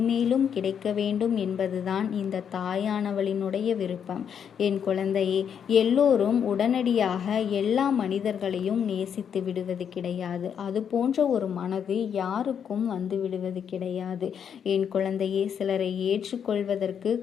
கிடைக்க வேண்டும் என்பதுதான் இந்த தாயானவளினுடைய விருப்பம். என் குழந்தையே, எல்லோரும் உடனடியாக எல்லா மனிதர்களையும் நேசித்து விடுவது கிடையாது. அது போன்ற ஒரு மனது யாருக்கும் வந்து விடுவது கிடையாது. என் குழந்தையே, சிலரை ஏற்றுக்கொள்வதற்கு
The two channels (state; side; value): quieter; right; 7.9 dB